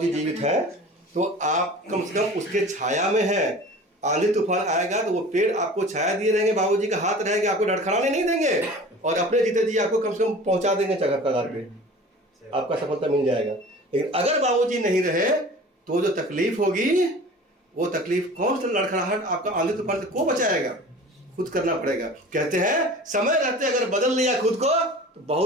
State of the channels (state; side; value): normal; both; correlation 0.41